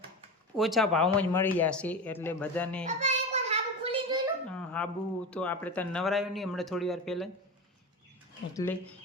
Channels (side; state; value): both; normal; correlation 0.25